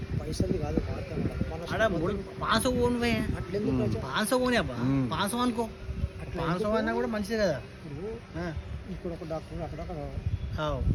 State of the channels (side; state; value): both; identical; correlation 1.00